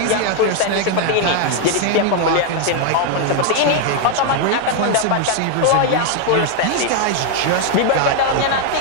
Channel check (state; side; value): different; both; correlation 0.00